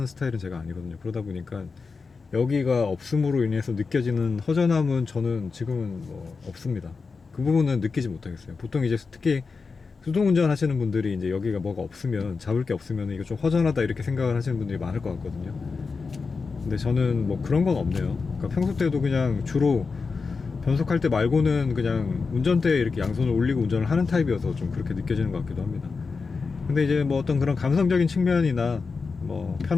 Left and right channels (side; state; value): right; quieter; 4.7 dB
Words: 스타일은 제가 아니거든요. 그러다 보니까 여기가 없음으로 인해서 느껴지는 허전함은 저는 지금은 뭐 없습니다. 그 부분은 느끼지 못하겠어요. 보통 이제 특히 수동 운전 하시는 분들이 이제 여기가 뭐가 없으면, 잡을 게 없으면 이거 좀 허전하다 이렇게 생각을 하시는 분들이 많을 것 같거든요. 근데 저는 뭐 그런 건 없네요. 그러니까 평소 때도 그냥 주로 변속할 때 말고는 그냥 운전대에 이렇게 양손을 올리고 운전을 하는 타입이어서 좀 그렇게 느껴지는 것 같기도 합니다. 근데 이제 뭐 어떤 그런 감성적인 측면이나 뭐